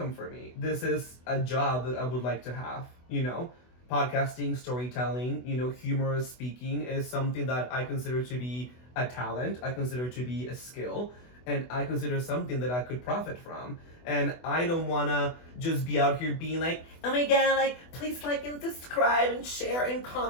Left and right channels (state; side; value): late; right; 24 ms